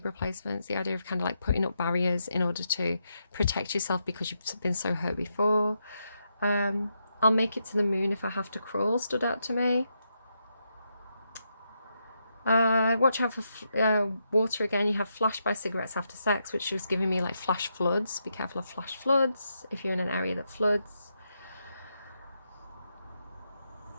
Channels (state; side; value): inverted; both; correlation -0.82